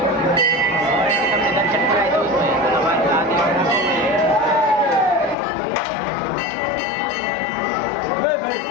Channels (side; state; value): right; drops out; at 5.4 s